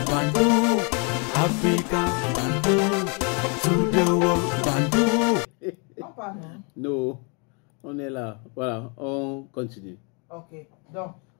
Bandung, Africa, Bandung, to the world, Bandung. Non, pas non. Non, on est là. Voilà, on continue. Ok, donc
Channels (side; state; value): right; quieter; 34.8 dB